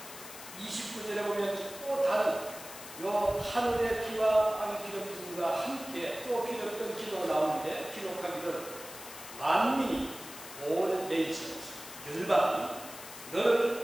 29절에 보면 또 다른 요 하늘의 비와 땅의 기름짐과 함께 또 기도했던 기도가 나오는데 기록하기를 만민이 all nations 열방이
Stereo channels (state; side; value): noise; left; hiss, 13 dB below the sound